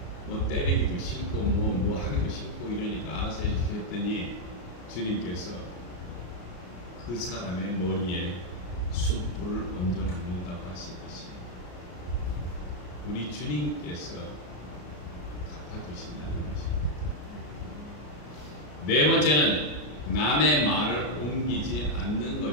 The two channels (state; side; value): late; right; 33 ms